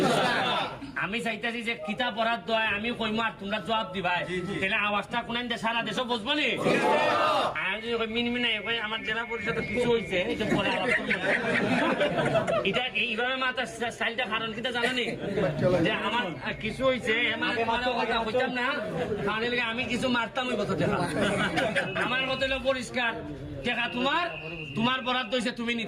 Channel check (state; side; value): identical; both; correlation 1.00